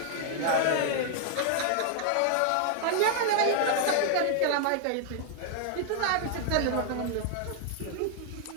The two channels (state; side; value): different; both; correlation 0.00